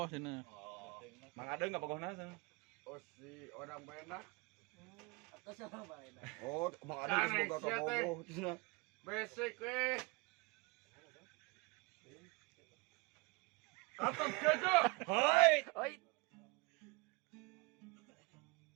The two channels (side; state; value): left; quieter; 27.4 dB